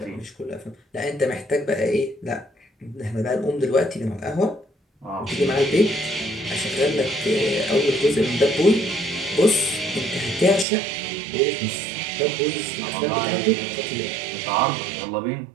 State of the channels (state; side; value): drops out; left; at 10.7 s